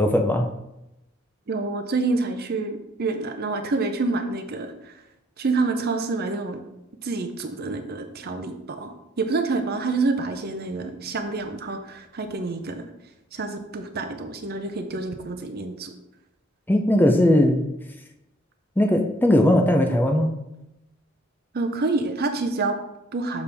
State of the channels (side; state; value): both; normal; correlation 0.67